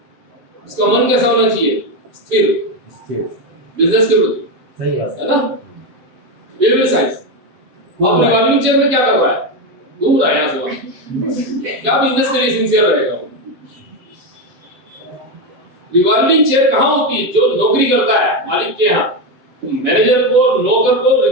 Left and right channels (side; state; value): left; late; 7.8 ms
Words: उसका मन कैसा होना चाहिए, स्थिर बिजनेस के प्रति, सही है ना? Behaviour science. अब रिवॉल्विंग चेयर में क्या कर रहा है, घूम रहा है यहाँ से, क्या बिजनेस के लिए सिंसियर रहेगा? रिवॉल्विंग चेयर कहाँ होती है? जो नौकरी करता है मालिक के यहाँ, मैनेजर को, नौकर को